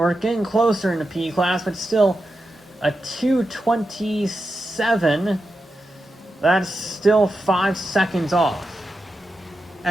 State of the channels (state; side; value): normal; both; correlation 0.89